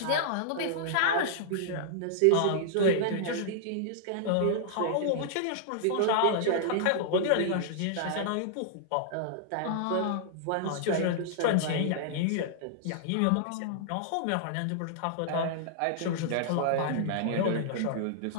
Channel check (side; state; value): both; different; correlation -0.01